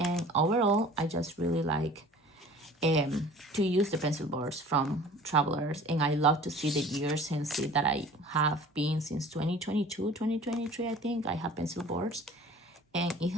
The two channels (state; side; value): normal; both; correlation 0.46